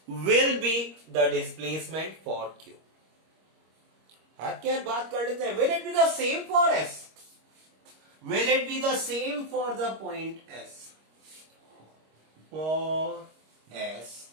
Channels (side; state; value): left; late; 25 ms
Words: will be the displacement for q. हाथ के हाथ बात कर लेते हैं, will it be the same for s, will it be the same for the point s, for s